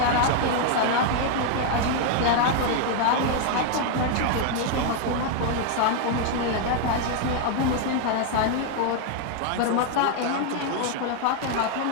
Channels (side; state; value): both; different; correlation 0.00